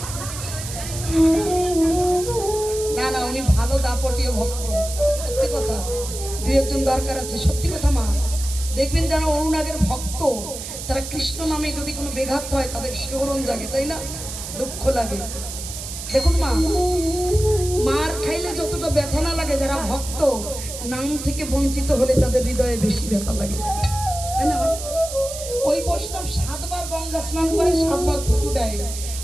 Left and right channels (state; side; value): noise; right; hiss, 9 dB below the sound